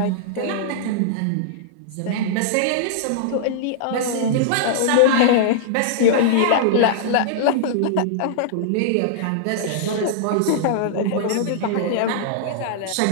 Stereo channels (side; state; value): both; different; correlation -0.01